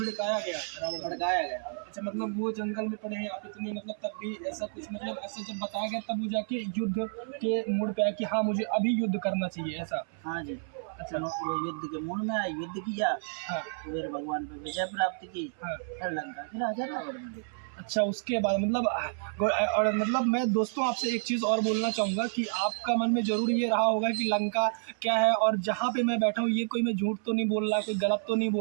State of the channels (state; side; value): silent; left; 58 dB below the other